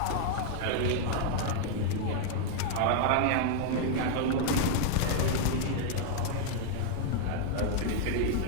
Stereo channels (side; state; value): both; different; correlation 0.00